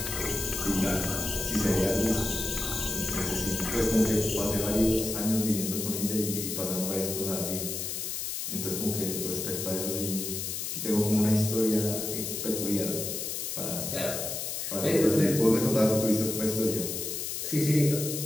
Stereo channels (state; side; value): noise; left; hiss, 4 dB below the sound